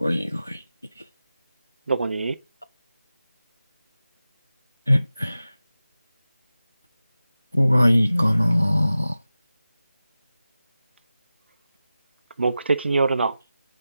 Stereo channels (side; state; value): both; inverted; correlation -0.95